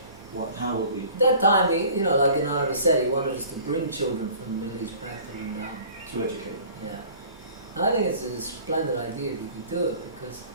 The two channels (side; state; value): both; inverted; correlation -0.48